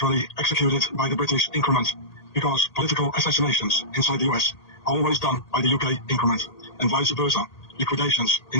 executed by the British increment, because political assassinations inside the US are always done by the UK increment, and vice versa. Liquidations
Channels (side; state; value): right; late; 1.8 ms